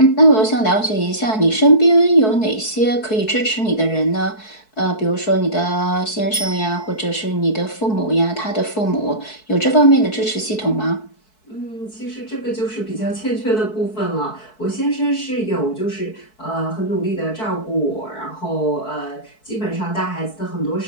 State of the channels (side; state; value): right; late; 4.6 ms